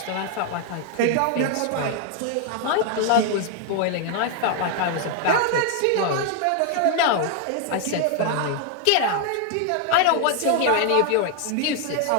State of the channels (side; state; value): both; different; correlation 0.00